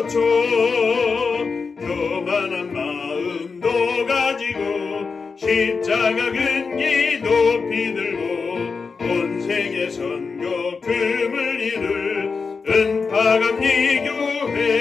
교만한 마음도 가지고 십자가 근기 높이 들고 온 세계 선교 금을 이룰 은파감리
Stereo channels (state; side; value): quieter; right; 4.9 dB